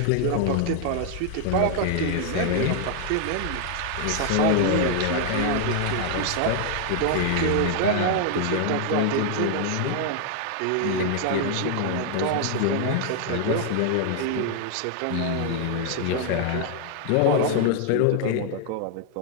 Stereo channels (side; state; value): both; different; correlation 0.00